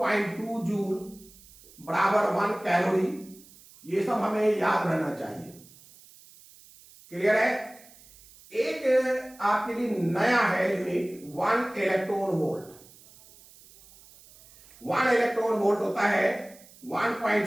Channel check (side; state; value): right; noise; hiss, 24 dB below the sound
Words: जूल बराबर 1 कैलोरी। ये सब हमें याद रहना चाहिए। क्लियर है? एक आपके लिए नया है unit 1 electron volt. 1 electron volt होता है